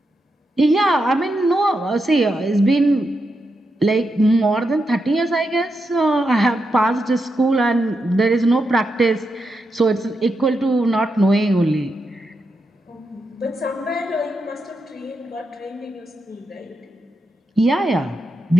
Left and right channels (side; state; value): both; normal; correlation 0.85